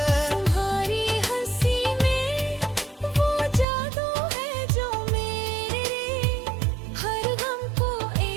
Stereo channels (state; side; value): drops out; left; at 3.7 s